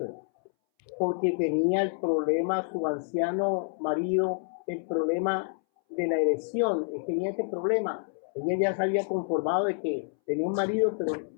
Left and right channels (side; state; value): right; silent; 59 dB below the other